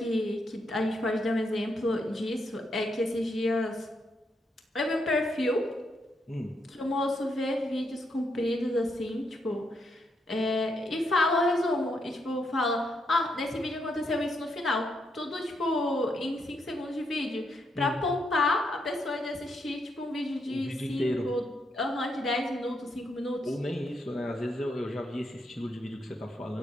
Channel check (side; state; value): both; normal; correlation 0.78